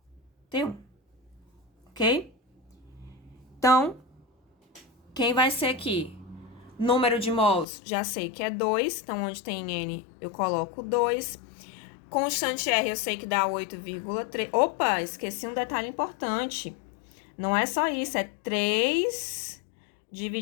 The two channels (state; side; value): drops out; right; at 7.7 s